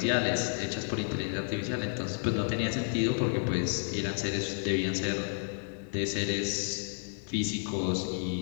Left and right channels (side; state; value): right; silent; 57 dB below the other